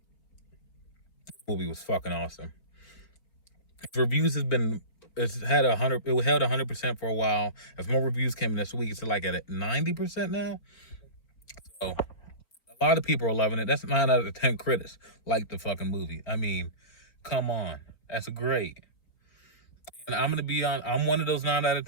this movie was fucking awesome. Its reviews it's held 100% for a while. As more reviews came in this week, it's like at 90% now. So a lot of people are loving it. That's 9 out of 10 critics like the fucking movie. I mean, come on, that's great. And I'm one of those 9 out of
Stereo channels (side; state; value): right; late; 4.3 ms